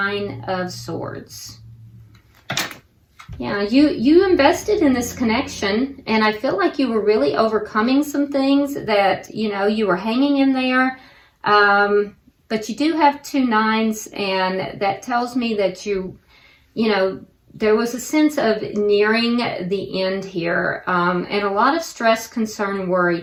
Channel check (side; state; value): both; identical; correlation 1.00